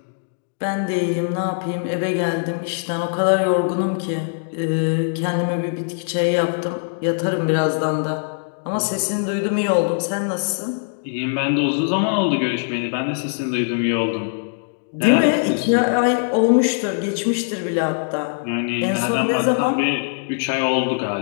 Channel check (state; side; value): silent; right; digital silence